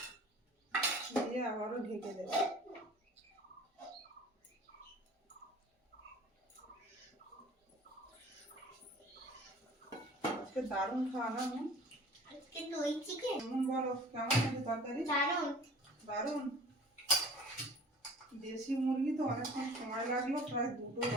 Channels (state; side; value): normal; both; correlation 0.45